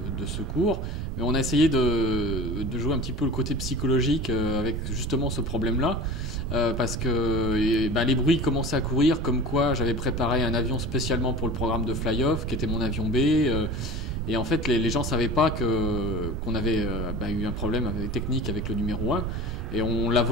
secours, mais on a essayé de jouer un petit peu le côté psychologique avec justement ce problème-là, parce que les bruits commençaient à courir, comme quoi j'avais préparé un avion spécialement pour le programme de fly-off, qui était mon avion B, et en fait les gens savaient pas qu'on avait eu un problème technique avec le numéro 1, et on l'a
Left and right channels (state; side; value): noise; right; rumble, 3 dB below the sound